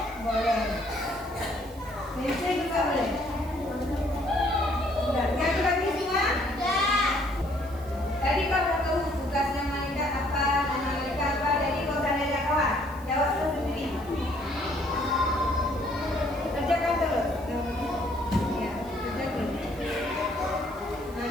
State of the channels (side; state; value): right; noise; hiss, 23 dB below the sound